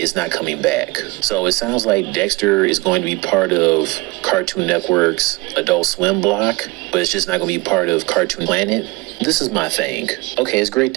not coming back. So it sounds like Dexter is going to be part of Cartoon Network's Adult Swim block, but it's just not going to be part of Cartoon Planet. This is my thing. Okay, it's great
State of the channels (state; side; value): quieter; left; 24.1 dB